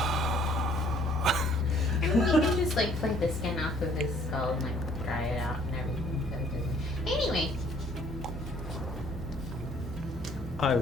mean, we can just like flake the skin off of his skull and like dry it out and everything. So it doesn't... Anyway, I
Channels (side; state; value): both; normal; correlation 0.59